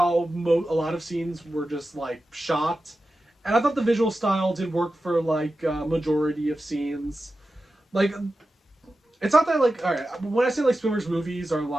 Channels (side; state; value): both; normal; correlation 0.93